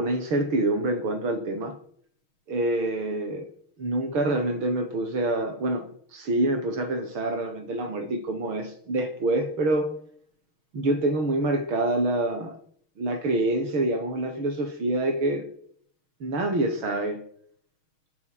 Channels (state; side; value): late; left; 6.4 ms